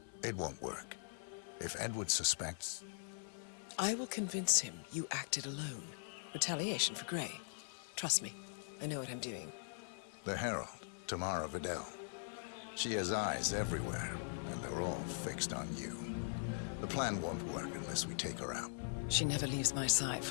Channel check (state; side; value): silent; right; 50 dB below the other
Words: It won't work. If Edward suspects... I will convince him you acted alone. Retaliation for Grey. Trust me, I know what I'm doing. The Herald, Tamara Vidal. She has eyes everywhere, and they're all fixed on you. The plan won't work unless we take her out. She never leaves my side